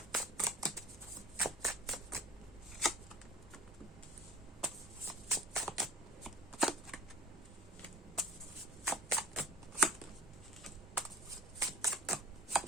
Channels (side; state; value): both; normal; correlation 0.42